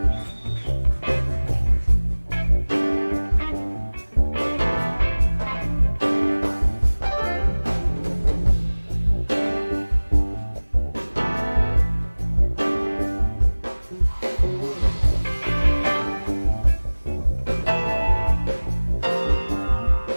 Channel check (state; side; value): inverted; both; correlation -1.00